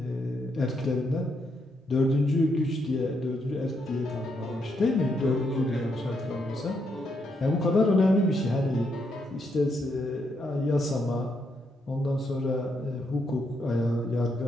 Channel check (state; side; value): normal; both; correlation 0.78